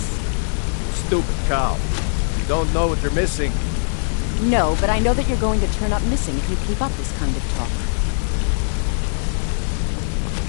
Stupid cow. You don't know what you're missing. No, but I know that you're going to turn up missing if you keep up this kind of talk.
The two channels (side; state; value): right; silent; digital silence